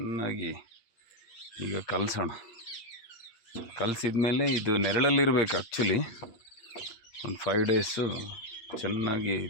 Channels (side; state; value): right; late; 8.7 ms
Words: ಈಗ ಕಲಸೋಣ. ಕಲಸಿದ ಮೇಲೆ ಇದು ನೆರಳಲ್ಲಿರಬೇಕು ಆ್ಯಕ್ಚುಲಿ. ಒಂದು 5 ಡೇಸು ಚೆನ್ನಾಗಿ